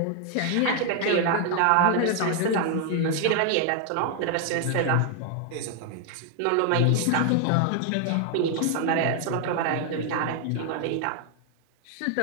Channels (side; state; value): both; different; correlation 0.00